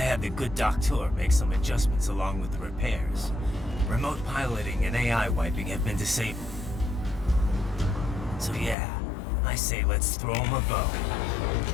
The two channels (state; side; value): drops out; right; at 8.8 s